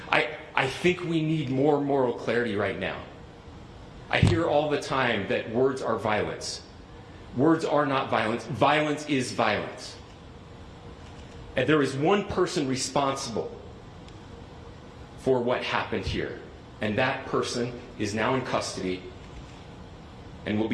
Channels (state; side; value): identical; both; correlation 1.00